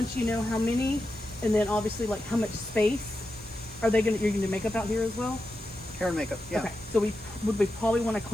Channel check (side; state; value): both; normal; correlation 0.89